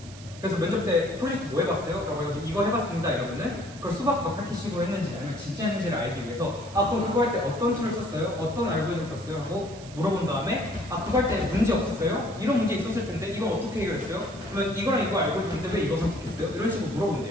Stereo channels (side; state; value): right; noise; hiss, 18 dB below the sound